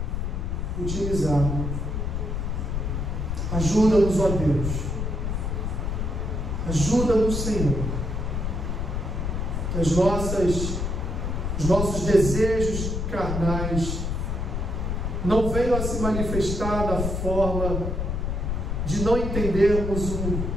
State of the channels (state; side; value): noise; left; rumble, 1 dB below the sound